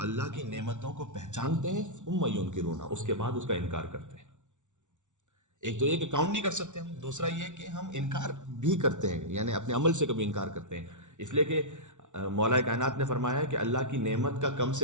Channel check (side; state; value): left; late; 0.85 ms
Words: کی نعمتوں کو پہچانتے ہیں ثم ینکرونہا، اس کے بعد اس کا انکار کرتے ہیں. ایک تو یہ کہ کاؤنٹ نہیں کر سکتے ہم، دوسرا یہ کہ ہم انکار بھی کرتے ہیں، یعنی اپنے عمل سے کبھی انکار کرتے ہیں. اس لیے کہ مولا کائنات نے فرمایا کہ اللہ کی نعمت کا کم